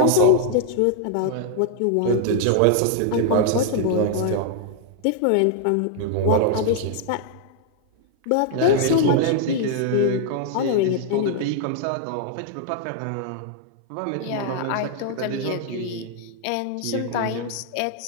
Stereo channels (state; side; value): different; both; correlation -0.01